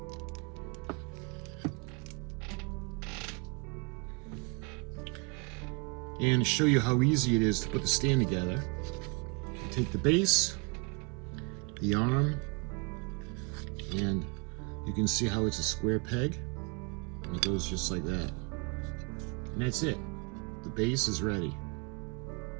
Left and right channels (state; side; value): quieter; left; 33.6 dB